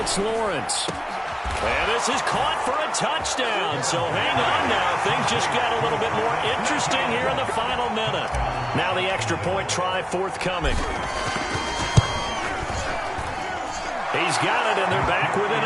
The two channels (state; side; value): identical; both; correlation 1.00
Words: Lawrence. And this is caught for a touchdown. So hang on now. Things just got a little bit more interesting here in the final minute. Now the extra point try forthcoming. He's got it, and they're back within